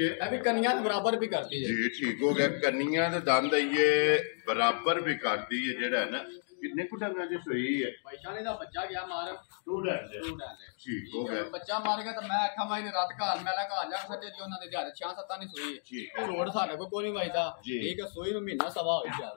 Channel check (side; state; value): right; silent; digital silence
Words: ਇਹ ਵੀ ਕੰਨੀਆਂ ਦੇ ਬਰਾਬਰ ਵੀ ਕਰਦੀ ਹੈ ਜੀ। ਠੀਕ ਹੋ ਗਿਆ। ਕੰਨੀਆਂ ਦੇ ਦੰਦ ਇਹ ਬਰਾਬਰ ਵੀ ਕਰਦੀ ਹੈ ਜਿਹੜਾ ਹੈ ਨਾ। ਕਿੰਨੇ ਕੁ ਡੰਗਾਂ ਦੀ ਸੂਈ ਹੈ? ਪੈਸਾ ਨੇ ਦਾ ਬੱਚਾ ਗਿਆ ਮਾਰ ਸਟੂਡੈਂਟ ਠੀਕ ਹੋ ਗਿਆ। ਬੱਚਾ ਮਾਰ ਗਿਆ ਤਾਂ ਮੈਂ ਆਖਾਂ ਮਾਈ ਨੇ ਰਾਤ ਘਰ ਮੈਲਾ ਘਰ ਜਾ ਸਕਦੇ ਜੀ ਉਹਨਾਂ ਦੇ ਦਿਹਾੜੇ 6-7 ਨਹੀਂ ਸੋਈ ਠੀਕ ਹੈ। ਰੋਡ ਸਾਡੇ ਕੋਲ ਕੋਈ ਨਹੀਂ ਵਜਦਾ ਠੀਕ ਹੈ। ਸੋਈ ਨੂੰ ਮਹੀਨਾ ਸਵਾ ਹੋ ਗਿਆ।